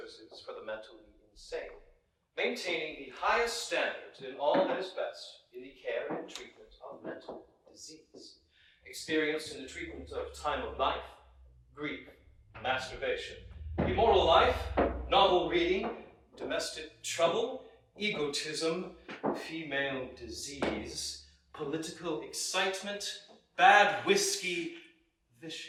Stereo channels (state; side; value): identical; both; correlation 1.00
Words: for the mentally insane, maintaining the highest standards in all that is best in the care and treatment of mental disease, experienced in the treatment of time of life, grief, masturbation, immoral life, novel reading, domestic trouble, egotism, female disease, political excitement, bad whiskey,